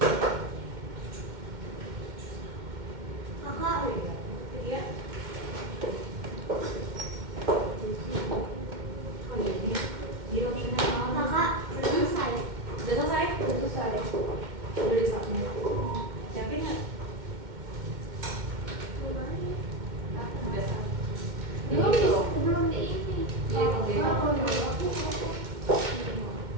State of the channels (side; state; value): left; late; 2.1 ms